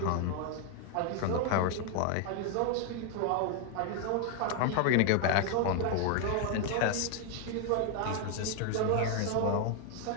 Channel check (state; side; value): different; both; correlation 0.00